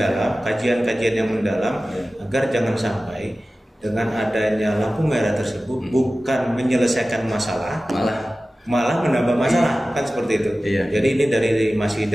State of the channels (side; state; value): both; normal; correlation 0.96